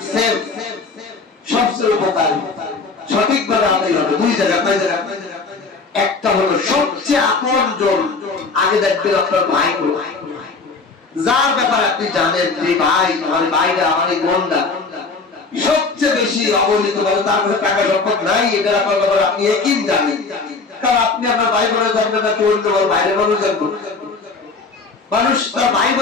সেফ, সবচেয়ে উপকারী, সঠিকভাবে আদায় হবে 2 জায়গা। একটা হলো সবচেয়ে আপনজন, আগে দেখবেন আপনার ভাই গুলো, যার ব্যাপারে আপনি জানেন যে ভাই আমার ভাইরা আমার এই বোনরা সবচেয়ে বেশি অবহেলিত বলে, তার কাছে টাকা সম্পদ নাই, এটা আপনার ব্যাপারে আপনি একই জানেন, কারণ আপনি আপনার ভাই বোনের জানবেন না, কেউ বাইরের মানুষ জানবো, মানুষ তার ভাই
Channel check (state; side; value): quieter; right; 4.2 dB